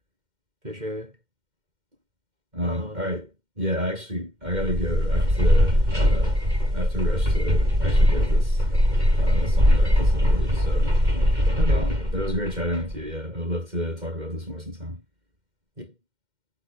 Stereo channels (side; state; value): left; late; 2.1 ms